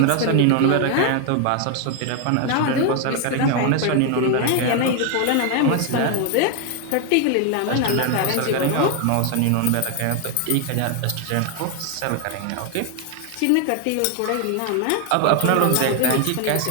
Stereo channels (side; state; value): both; different; correlation 0.01